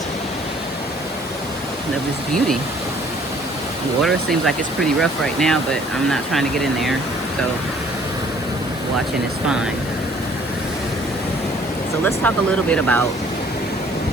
of this beauty. The water seems like it's pretty rough right now, but I'm not trying to get in there, so watching is fine. So let's talk a little bit about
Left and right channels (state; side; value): normal; both; correlation 0.58